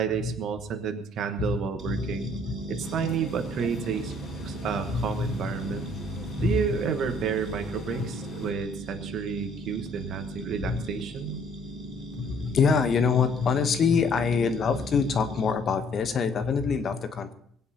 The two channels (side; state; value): both; normal; correlation 0.60